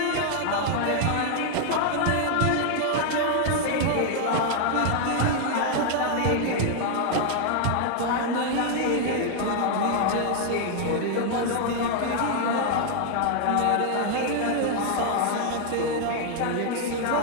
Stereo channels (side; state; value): both; different; correlation 0.00